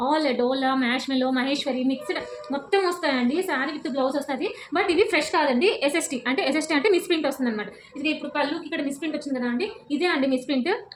ఆల్ డోలా, మ్యాష్ మెలో, మహేశ్వరి మిక్స్డ్ మొత్తం వస్తాయండి. శారీ విత్ బ్లౌజ్ వస్తుంది. బట్ ఇవి ఫ్రెష్ కాదండి. ఎస్ఎస్టీ అంటే మిస్ ప్రింట్ వస్తుందన్నమాట. ఇది ఇప్పుడు పళ్ళుకి ఇక్కడ మిస్ ప్రింట్ వచ్చింది కదా అండి. ఇదే అండి మిస్ ప్రింట్.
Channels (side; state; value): both; identical; correlation 1.00